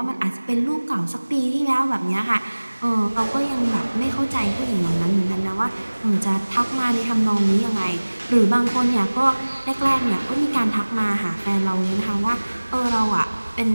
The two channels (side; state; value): both; inverted; correlation -1.00